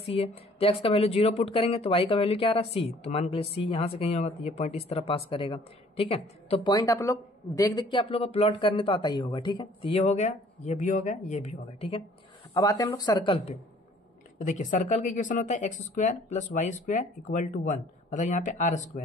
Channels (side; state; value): both; normal; correlation 0.56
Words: c है, तो x का वैल्यू 0 पुट करेंगे तो y का वैल्यू क्या आ रहा है c, तो मान के लिए c यहाँ से कहीं होगा तो ये पॉइंट इस तरह पास करेगा। ठीक है, तो पॉइंट आप लोग देख देख के आप लोग को प्लॉट करने तो आता ही होगा। ठीक है, तो ये हो गया, ये भी हो गया, ये भी हो गया। ठीक है, अब आते हैं हम लोग सर्कल पे। तो देखिए सर्कल का इक्वेशन होता है x square plus y square equal to 1, मतलब यहाँ पे आर